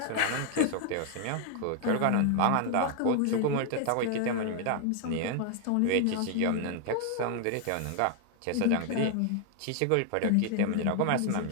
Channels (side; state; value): both; different; correlation 0.00